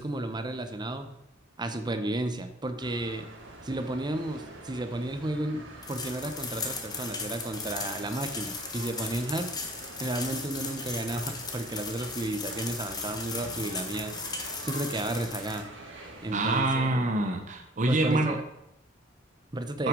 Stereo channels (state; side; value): normal; both; correlation 0.53